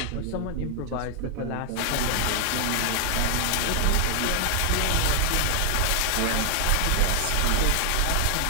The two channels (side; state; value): both; different; correlation 0.00